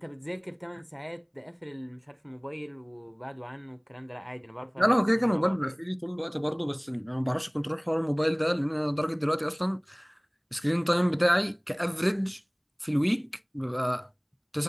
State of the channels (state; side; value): identical; both; correlation 1.00